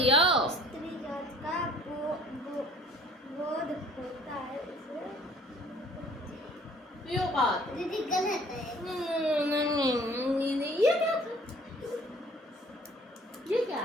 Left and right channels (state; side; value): normal; both; correlation 0.54